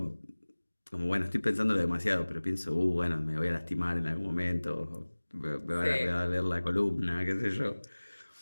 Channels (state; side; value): inverted; both; correlation -1.00